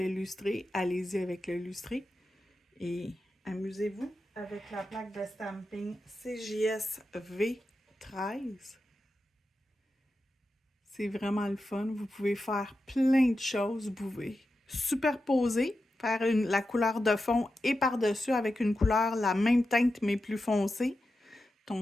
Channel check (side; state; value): both; normal; correlation 0.90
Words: lustré, allez-y avec le lustré. Et amusez-vous avec la plaque de stamping CJS V13. C'est vraiment le fun. Vous pouvez faire plein de choses. Vous pouvez superposer, faire la couleur de fond et par-dessus avec une couleur, la même teinte mais plus foncée,